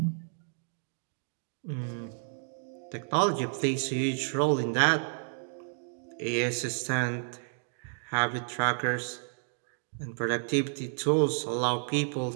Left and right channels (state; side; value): silent; left; digital silence